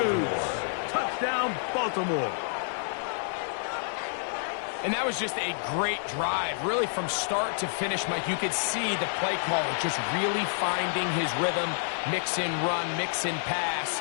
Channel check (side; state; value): right; silent; 59 dB below the other